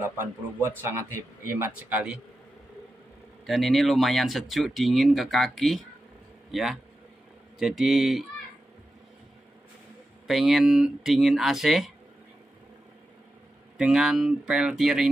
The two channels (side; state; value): both; normal; correlation 0.91